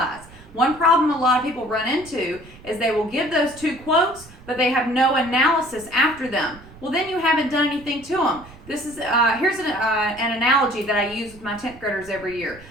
One problem a lot of people run into is they will give those 2 quotes, but they have no analysis after them. Well, then you haven't done anything to them. This is here's an analogy that I use with my 10th graders every year.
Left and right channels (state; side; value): noise; right; rumble, 21 dB below the sound